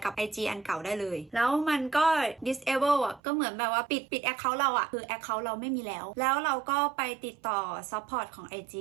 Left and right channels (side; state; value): left; drops out; at 3.2 s